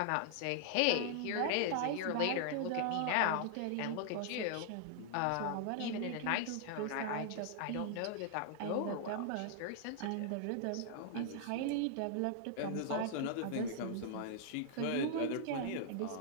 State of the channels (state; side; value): different; both; correlation 0.00